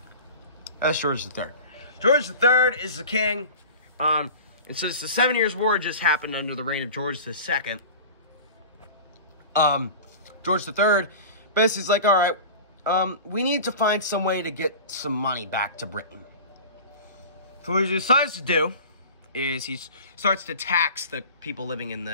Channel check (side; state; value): both; inverted; correlation -0.36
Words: That's George III. George III is the king. And since the 7 Years' War just happened under the reign of George II, George III basically is like, all right, we need to find some way to get some money back to Britain. So what he decides to do is he starts to tax the people living in